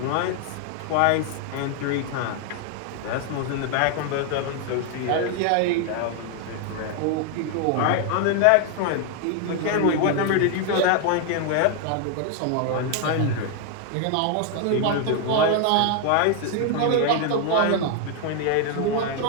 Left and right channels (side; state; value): both; different; correlation 0.01